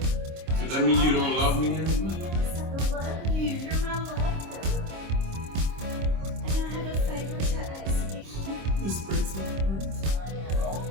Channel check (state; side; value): late; left; 26 ms